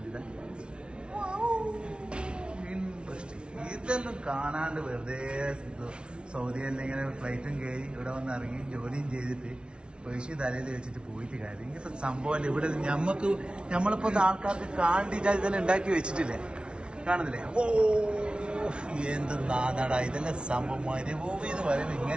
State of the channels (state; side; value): late; left; 0.057 ms